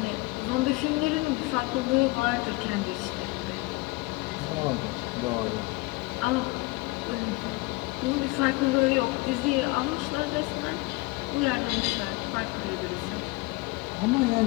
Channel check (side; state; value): right; quieter; 23.7 dB